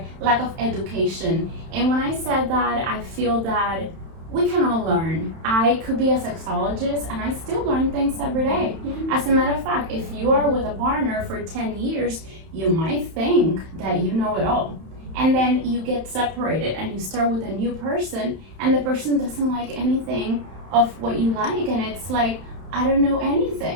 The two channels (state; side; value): late; left; 31 ms